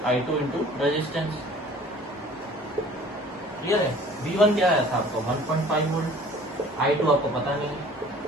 I2 × रेजिस्टेंस। क्लियर है, V1 क्या आया था आपको 1.5 वोल्ट, I2 आपको पता नहीं,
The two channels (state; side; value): normal; both; correlation 0.49